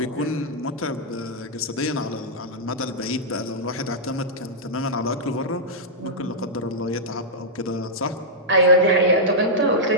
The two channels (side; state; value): both; normal; correlation -0.10